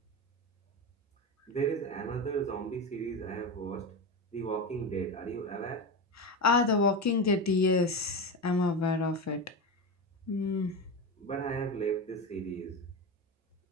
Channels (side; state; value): both; normal; correlation 0.20